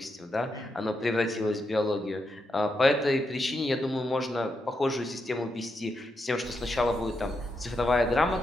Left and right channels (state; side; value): normal; both; correlation 0.83